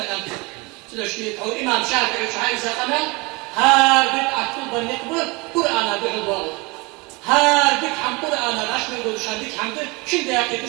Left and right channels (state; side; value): quieter; left; 26.5 dB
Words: تدع شيء أو إمام شافعي وشعائز قمال هادك أكتب النقبل قرآن بحضاره هادك حم قرآن الأشمل ودشان ديك حمد شن دياكي